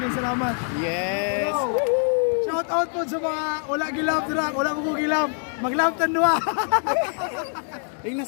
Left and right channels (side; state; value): right; silent; 59 dB below the other